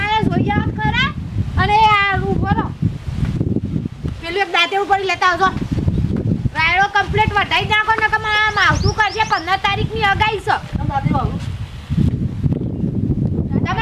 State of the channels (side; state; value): both; identical; correlation 1.00